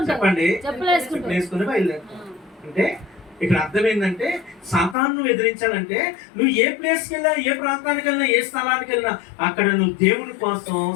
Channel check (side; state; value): right; drops out; at 5.0 s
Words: చెప్పండి. చెప్పులు వేసుకుని బయలుదేరుతావు. అంటే ఇక్కడ అర్థం ఏంటంటే సాతాను ఎదిరించాలంటే నువ్వు ఏ ప్లేస్కి వెళ్ళినా, ఏ ప్రాంతానికి వెళ్ళినా, ఏ స్థలానికి వెళ్ళినా అక్కడ నువ్వు దేవుని కోసం